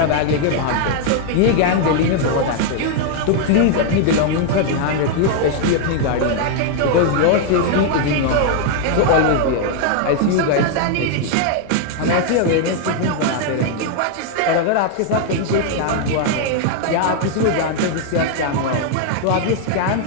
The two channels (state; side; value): different; both; correlation 0.00